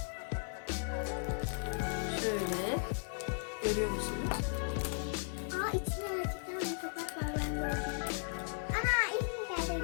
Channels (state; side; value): silent; right; digital silence